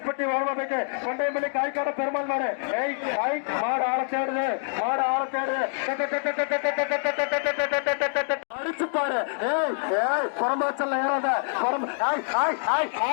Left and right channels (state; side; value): silent; right; digital silence